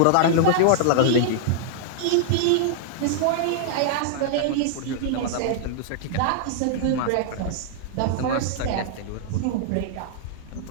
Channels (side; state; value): both; different; correlation -0.01